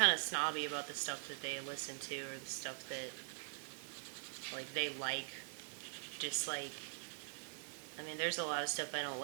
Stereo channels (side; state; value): left; silent; digital silence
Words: of snobby about the stuff that they listen to or the stuff that, like, they like, dislike. I mean, there's a lot of stuff I don't